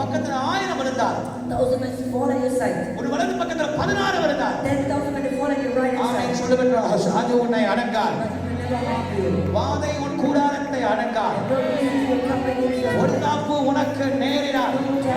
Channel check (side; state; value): both; identical; correlation 1.00